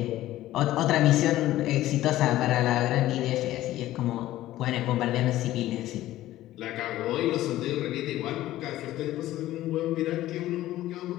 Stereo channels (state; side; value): quieter; right; 14.9 dB